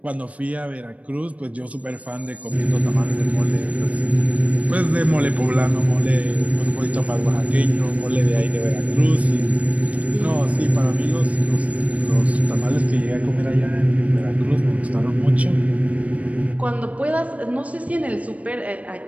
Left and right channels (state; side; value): late; left; 0.067 ms